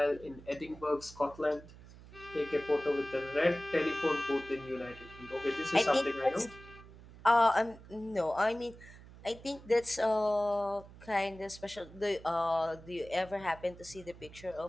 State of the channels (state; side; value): noise; right; hum, 19 dB below the sound